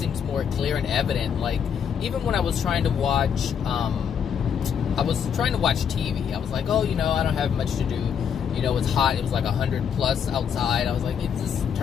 more clear and evident. Like, even when I was trying to watch, TV, I was like, oh, you know, I don't have much to do. You know, it's hot. It was like 100 plus outside. I was like, just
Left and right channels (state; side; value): quieter; right; 7.7 dB